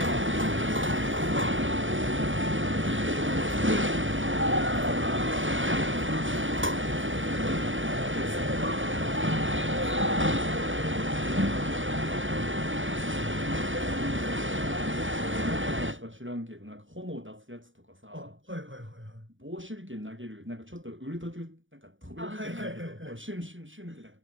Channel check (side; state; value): left; late; 0.57 ms